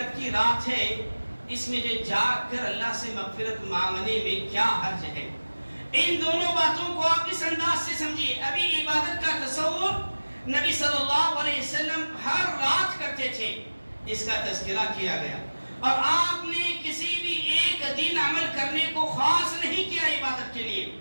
کی رات ہے، اس میں جو جاگ کر اللہ سے مغفرت مانگنے میں کیا حرج ہے؟ ان دونوں باتوں کو آپ اس انداز سے سمجھیے۔ ابھی عبادت کا تصور نبی صلی اللہ علیہ وسلم ہر رات کرتے تھے، اس کا تذکرہ کیا گیا، اور آپ نے کسی بھی ایک دن عمل کرنے کو خاص نہیں کیا عبادت کے لیے۔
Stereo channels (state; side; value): inverted; both; correlation -1.00